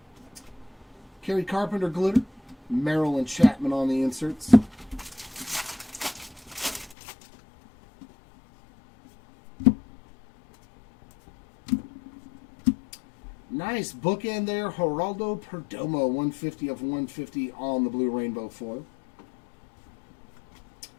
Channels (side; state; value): right; drops out; at 7.0 s